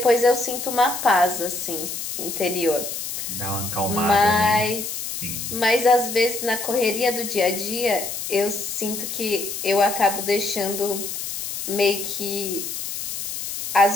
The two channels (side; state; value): left; noise; hiss, 5 dB below the sound